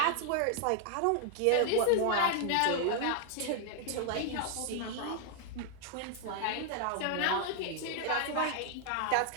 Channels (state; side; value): different; both; correlation 0.00